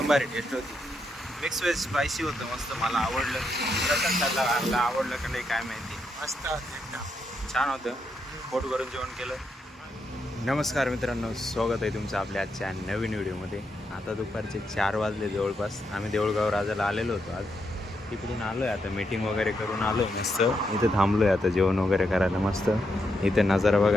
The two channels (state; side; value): normal; both; correlation 0.81